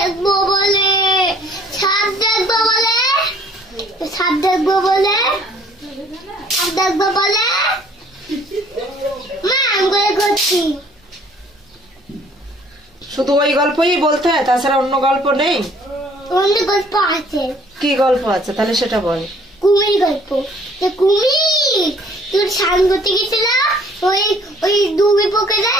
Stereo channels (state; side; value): normal; both; correlation 0.58